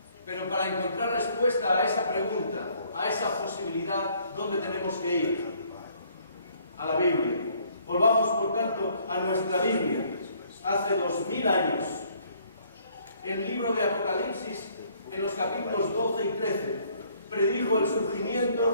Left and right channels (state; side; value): inverted; both; correlation -0.63